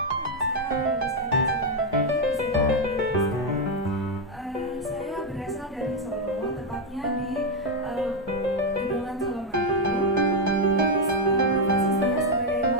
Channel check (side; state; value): both; normal; correlation 0.03